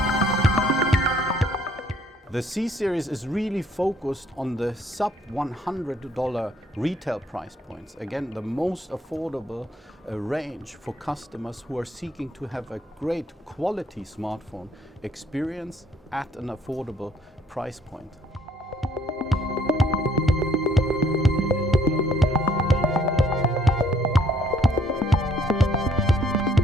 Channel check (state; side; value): normal; both; correlation 0.64